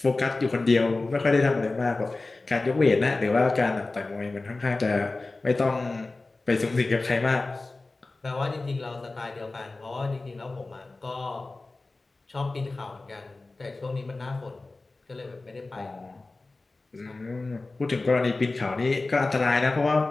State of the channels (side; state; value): right; quieter; 3.3 dB